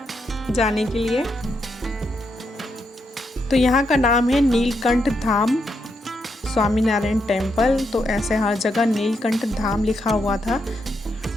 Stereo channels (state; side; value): normal; both; correlation 0.81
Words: जाने के लिए। तो यहाँ का नाम है नीलकंठ धाम स्वामी नारायण टेम्पल। तो ऐसे हर जगह नीलकंठ धाम लिखा हुआ था।